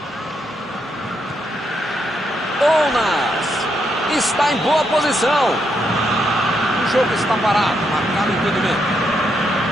Ounas está em boa posição. O jogo está parado, marcado impedimento.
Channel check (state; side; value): normal; both; correlation 0.79